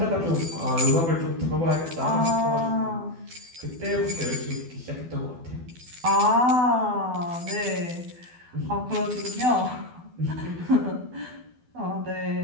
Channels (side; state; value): left; late; 12 ms